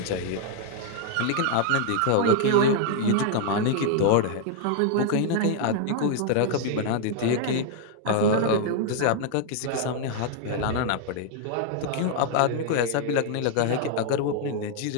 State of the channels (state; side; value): different; both; correlation 0.00